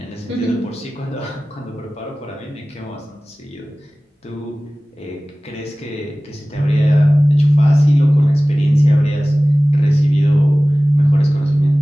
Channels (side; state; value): both; normal; correlation 0.98